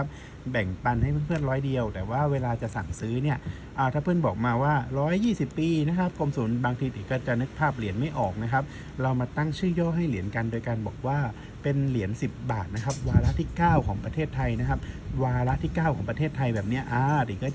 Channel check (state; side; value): identical; both; correlation 1.00